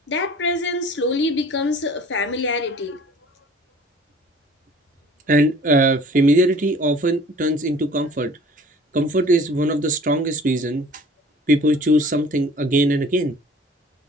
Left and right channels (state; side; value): normal; both; correlation 0.49